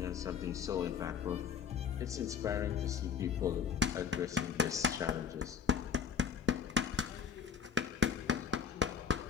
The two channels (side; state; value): right; quieter; 7.5 dB